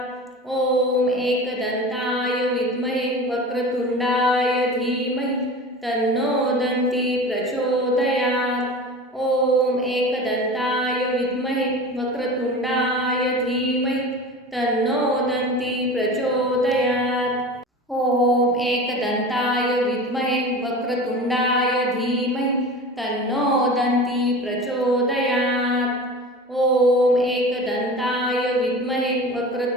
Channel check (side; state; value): both; normal; correlation 0.34